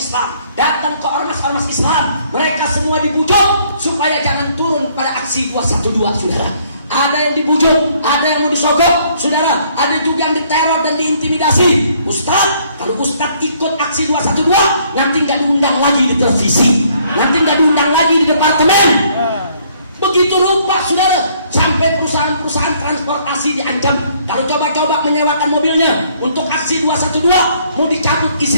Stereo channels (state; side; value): inverted; both; correlation -0.64